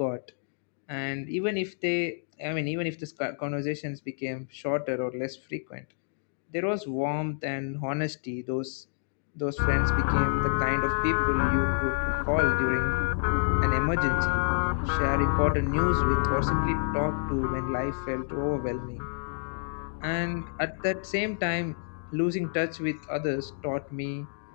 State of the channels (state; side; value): silent; right; digital silence